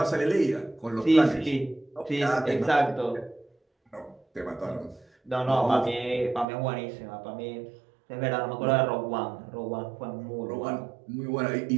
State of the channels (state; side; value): drops out; left; at 6.5 s